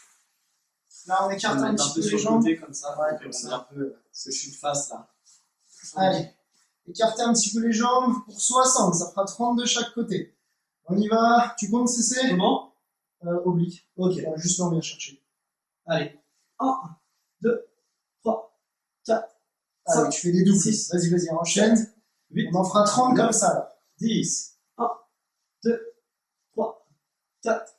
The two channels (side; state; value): both; identical; correlation 1.00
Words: Là, on écarte un petit peu les jambes. Comme ça, ouais, comme ça. Un peu, parce que je suis de face là. Allez, écartez un petit peu les jambes pour 60, ça fera 30 de chaque côté. On y va, tu comptes CC? Comment? Oblique. Ok, juste là, on vient chercher. Allez, 1, 2, 3, 4, Allez, 5, tu fais des doubles. 6, vas-y, enchaîne. 8, on en fera 30 comme ça là. 10, 1, 2, 3, 4,